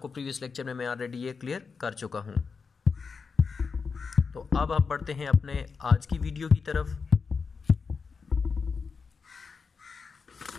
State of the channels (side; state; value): right; quieter; 5.2 dB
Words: previous lecture में मैं ऑलरेडी ये क्लियर कर चुका हूँ। तो अब हम बढ़ते हैं अपने आज की वीडियो की तरफ।